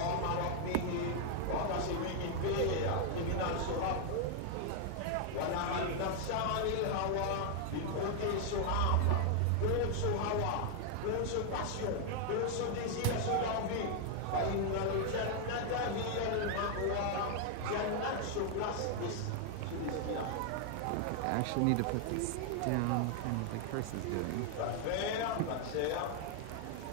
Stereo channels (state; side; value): different; both; correlation 0.00